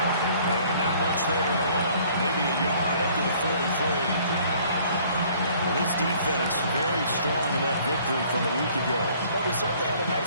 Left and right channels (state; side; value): inverted; both; correlation -0.57